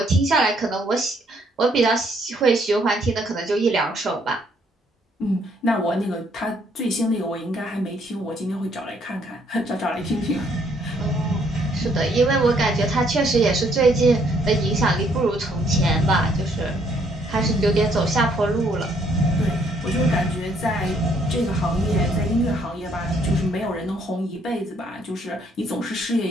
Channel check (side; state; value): both; normal; correlation 0.68